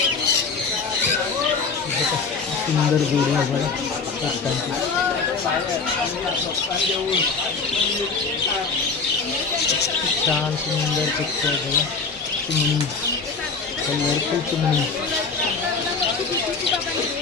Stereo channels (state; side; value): quieter; right; 4.7 dB